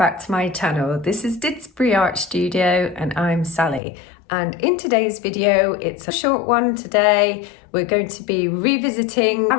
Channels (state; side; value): drops out; right; at 3.8 s